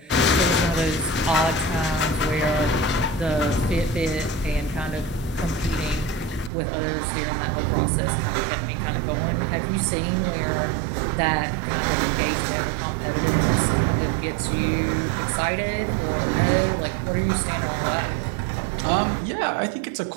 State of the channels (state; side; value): drops out; left; at 6.5 s